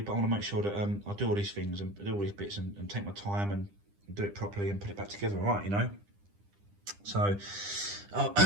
But I want to make sure that I do all these things and do all these bits and take my time and do it properly and put it back together, right? You know. So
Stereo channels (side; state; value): left; late; 9.9 ms